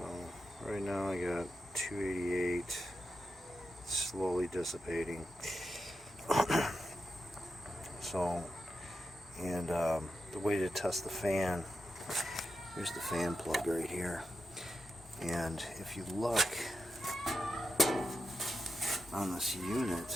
right now I got 288, slowly dissipating. So, and the way to test the fan, here's the fan plug right here, and if you look on this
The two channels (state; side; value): normal; both; correlation 0.88